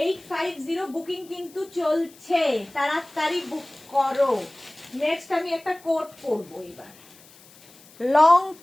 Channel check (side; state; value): left; noise; hiss, 24 dB below the sound